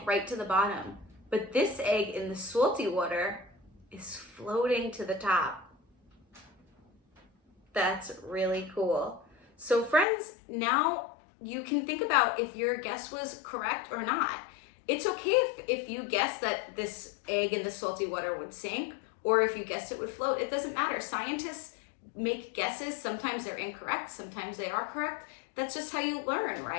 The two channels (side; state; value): right; drops out; at 10.1 s